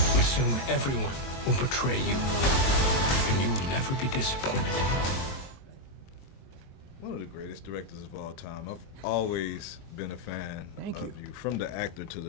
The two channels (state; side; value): late; right; 22 ms